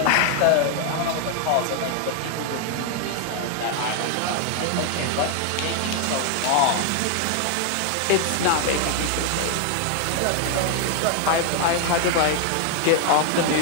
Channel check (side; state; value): both; different; correlation 0.00